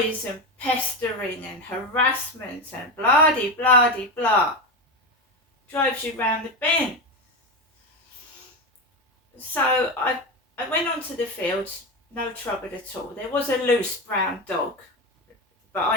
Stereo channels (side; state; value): both; normal; correlation 0.17